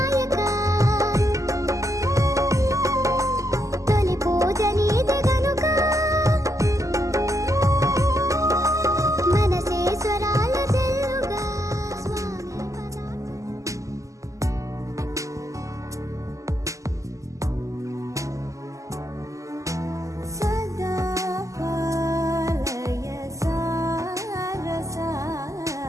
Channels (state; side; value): late; left; 0.16 ms